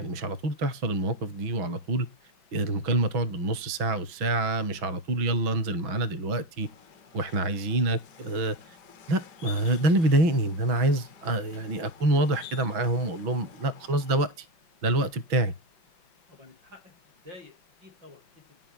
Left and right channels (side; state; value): left; late; 6.1 ms